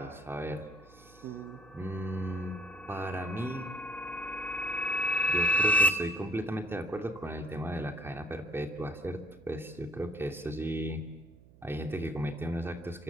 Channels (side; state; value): right; noise; hum, 24 dB below the sound